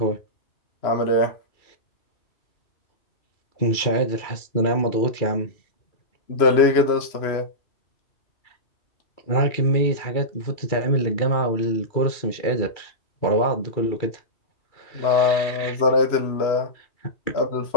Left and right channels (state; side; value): late; right; 2.3 ms